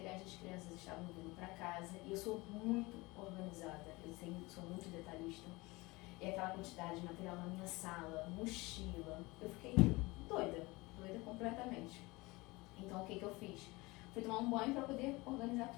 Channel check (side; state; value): right; quieter; 22.9 dB